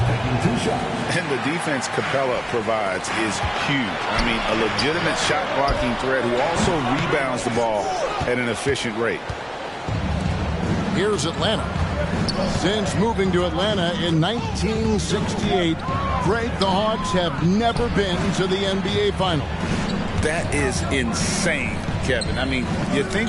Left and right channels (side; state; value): both; identical; correlation 1.00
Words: And the defense Capella provides is huge. I mean, a legitimate shot blocking threat who also rebounds the ball at an efficient rate. Here's Atlanta. Since moving to Atlanta in 1968, Greg, the Hawks have never been to the NBA Finals. That is insane, Kevin. I mean, you